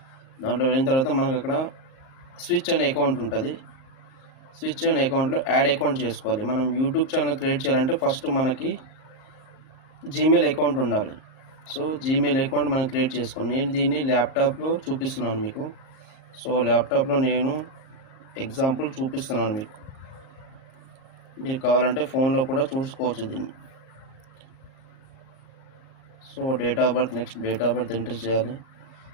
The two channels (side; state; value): right; late; 38 ms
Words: దాంట్లో వెళ్ళిన తర్వాత మనకు అక్కడ స్విచ్ అనే అకౌంట్ ఉంటుంది. స్విచ్ అనే అకౌంట్లో యాడ్ అకౌంట్ చేసుకోవాలి. మనం యూట్యూబ్ ఛానల్ క్రియేట్ చేయాలంటే ఫస్ట్ మనకి జీమెయిల్ అకౌంట్ ఉండాలి. సో జీమెయిల్ అకౌంట్ మనం క్రియేట్ చేసుకోండి. నేను దీన్ని ల్యాప్టాప్లో చూపిస్తున్నాను మీకు. సో ల్యాప్టాప్లో నేను ఎగ్జాంపుల్ చూపిస్తున్నాను మీకు. మీరు కావాలంటే ఫోన్లో కూడా చూసుకోవచ్చు దీన్ని. So date of birth, next date of birth enter చేయాలి.